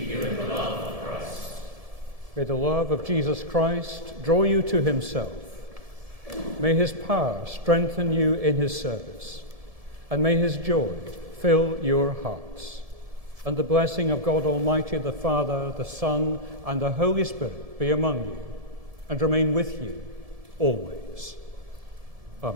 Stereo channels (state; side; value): late; left; 1.7 ms